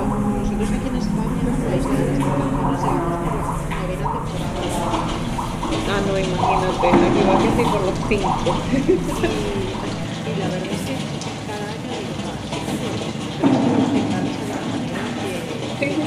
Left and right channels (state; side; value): identical; both; correlation 1.00